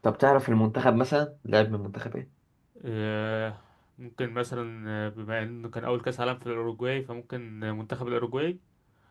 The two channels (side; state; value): both; identical; correlation 1.00